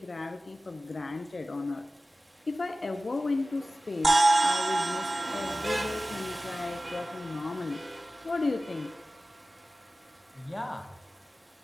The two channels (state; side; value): normal; both; correlation 0.96